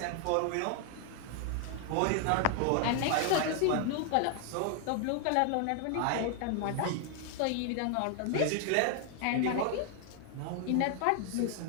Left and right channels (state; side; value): different; both; correlation 0.00